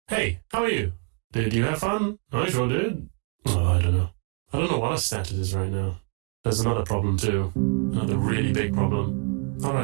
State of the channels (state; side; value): quieter; left; 34.8 dB